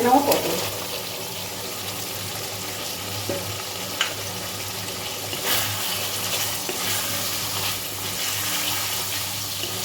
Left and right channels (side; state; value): both; identical; correlation 1.00